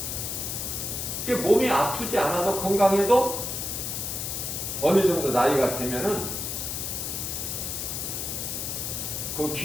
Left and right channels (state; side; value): noise; left; hiss, 3 dB below the sound